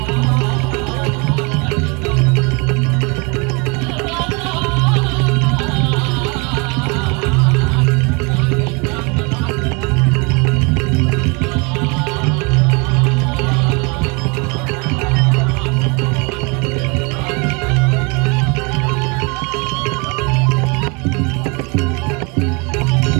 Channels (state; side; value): quieter; left; 30.4 dB